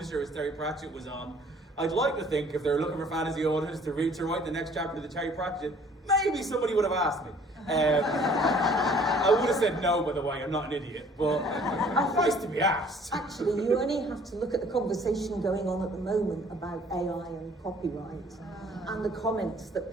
as Terry Pratchett was on, I'd like to think if they're looking for fantasy authors to write the next chapter of the Terry Pratchett, maybe somebody would have asked me. I would have said no, by the way, I'm not an idiot, but it's nice to be asked. Actually, you only have to look at the conversation going on at the moment about AI and copyright and the comments that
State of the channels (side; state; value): both; normal; correlation 0.55